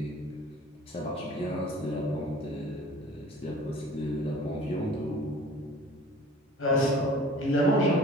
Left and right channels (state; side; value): normal; both; correlation 0.45